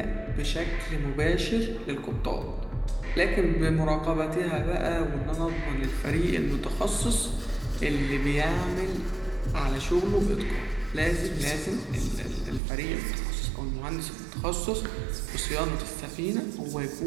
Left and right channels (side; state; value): left; drops out; at 12.6 s